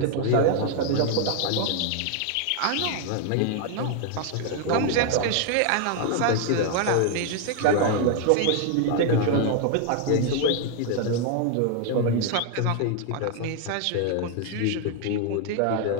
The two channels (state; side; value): different; both; correlation 0.00